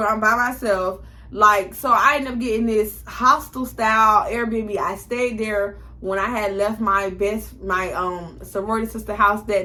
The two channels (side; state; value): both; identical; correlation 1.00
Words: I'm by myself. Like, so I ended up getting this hostel style Airbnb. I stayed there when I had left my sorority sister house